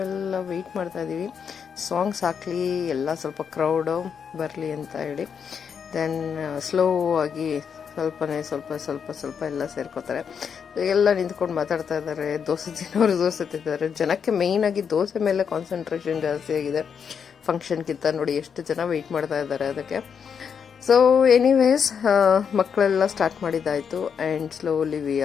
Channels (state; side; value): quieter; right; 7.0 dB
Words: ವೆಯ್ಟ್ ಮಾಡ್ತಾ ಇದ್ದೀವಿ ಸಾಂಗ್ಸ್ ಹಾಕ್ಲಿ, ಎಲ್ಲ ಸ್ವಲ್ಪ ಕ್ರೌಡು ಬರಲಿ ಅಂತ ಹೇಳಿ. ದೆನ್ ಸ್ಲೋ ಆಗಿ ಸ್ವಲ್ಪ ಎಲ್ಲ ಸೇರ್ಕೋತಾರೆ. ಎಲ್ಲ ನಿಂತ್ಕೊಂಡು ಮಾತಾಡ್ತಾ ಇದ್ದಾರೆ, ದೋಸೆ ತಿನ್ನೋರು ದೋಸೆ ತಿಂತಾರೆ. ಜನಕ್ಕೆ ಮೇಯ್ನಾಗಿ ದೋಸೆ ಮೇಲೆ ಕಾನ್ಸಂಟ್ರೇಷನ್ ಜಾಸ್ತಿ ಆಗಿದೆ ಫಂಕ್ಷನ್ಗಿಂತ. ನೋಡಿ ಎಷ್ಟು ಜನ ವೆಯ್ಟ್ ಮಾಡ್ತಾ ಇದ್ದಾರೆ ಅದಕ್ಕೆ. ಸೊ ಎನಿವೇಸ್, ಮಕ್ಕಳೆಲ್ಲ ಸ್ಟಾರ್ಟ್ ಮಾಡಿದ್ದಾಯಿತು and slowly we